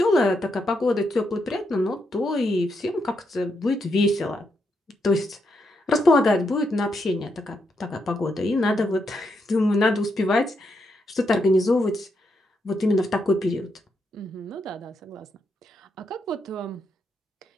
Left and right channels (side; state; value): both; normal; correlation 0.81